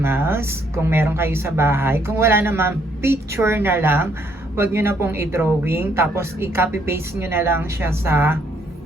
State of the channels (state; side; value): normal; both; correlation 0.69